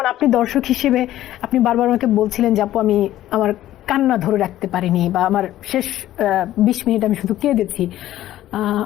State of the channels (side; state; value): right; quieter; 13.7 dB